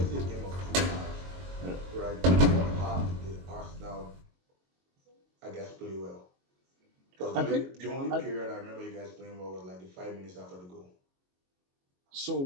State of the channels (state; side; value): late; left; 22 ms